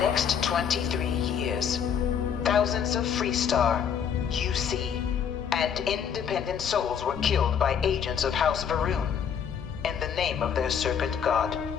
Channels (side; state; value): right; quieter; 7.8 dB